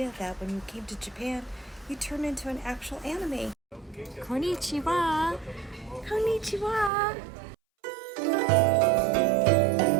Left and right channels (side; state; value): left; drops out; at 6.9 s